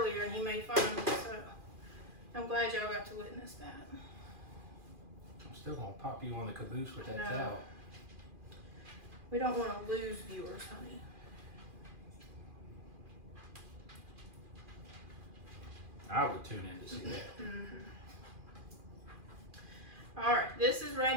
and he made fun of me, so I'm glad y'all got to witness that. Still gonna pop you on the caboose with that No. towel. We don't want to lose viewers, honey. I would tune in to see that. All right, this is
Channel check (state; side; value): late; left; 2.4 ms